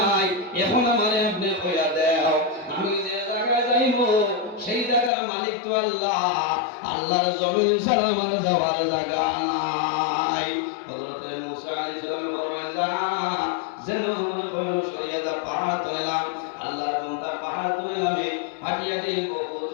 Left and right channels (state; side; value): drops out; right; at 5.1 s